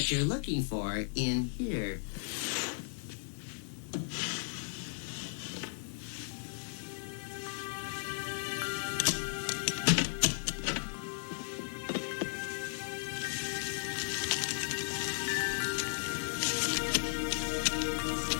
you're looking for in here.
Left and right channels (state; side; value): silent; right; digital silence